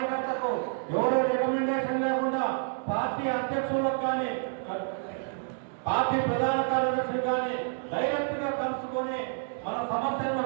ఎవరో రికమెండేషన్ లేకుండా పార్టీ అధ్యక్షులకు కానీ పార్టీ ప్రధాన కార్యదర్శులు కానీ డైరెక్ట్ గా కలుసుకొని మన సమస్యలను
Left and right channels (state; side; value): silent; left; 57 dB below the other